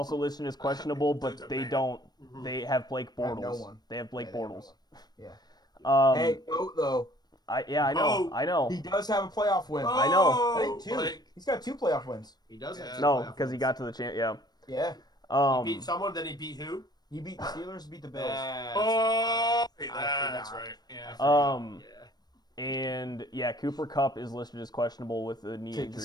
listed as questionable, but they don't. They have Blake Bortles. No one. They have Blake Bortles. Yeah. Hey, though. I know. He does have a playoff win. I know. I think 2. He's got 2 playoff wins. He does have 2 No, playoff because he wins. got to the champ. Yeah. Yeah. He beat someone, then he beat who? He beat the Steelers, beat the Bills. That's right. Yeah. And Cooper Kupp is listed as questionable with a knee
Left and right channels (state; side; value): late; right; 0.19 ms